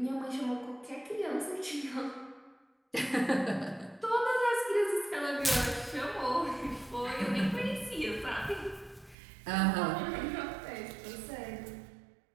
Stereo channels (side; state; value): left; drops out; at 9.2 s